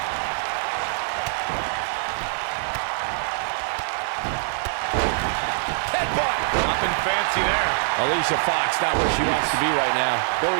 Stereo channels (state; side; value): silent; left; digital silence